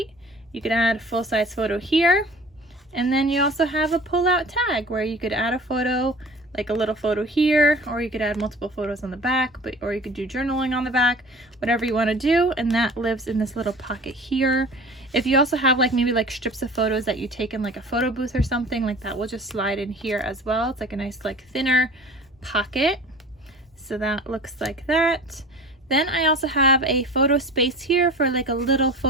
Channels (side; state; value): both; normal; correlation 0.42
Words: You could add a full-size photo here, and then you also have a pull-out tag where you could add a photo, like a little photo here, or you could add multiple photos on the back, or you could do journaling on the back, whatever you want to do, and that lives in this little pocket here. If you also have like maybe like strips of photos that you take in like a photo booth or something, like that will just slide in here as well. It's like a nice like thinner pocket. So that looks like that. Then I also have a photo space here for like a little